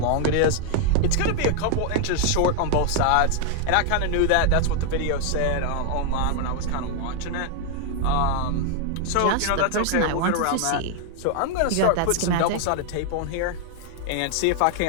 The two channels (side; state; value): both; different; correlation 0.00